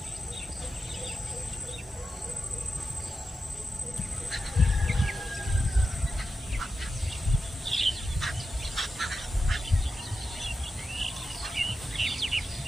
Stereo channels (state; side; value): normal; both; correlation 0.90